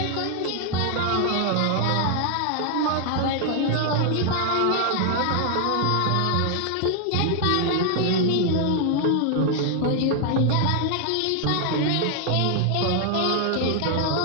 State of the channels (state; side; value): different; both; correlation 0.00